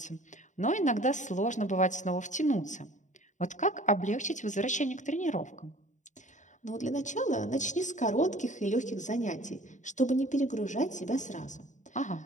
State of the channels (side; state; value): right; late; 0.36 ms